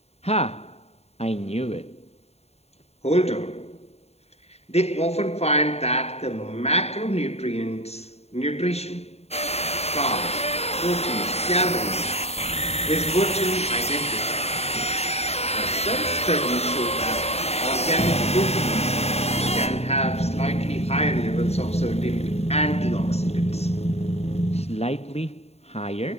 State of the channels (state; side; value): late; right; 0.30 ms